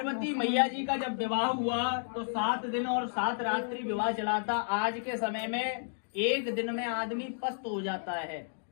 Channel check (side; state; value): right; silent; digital silence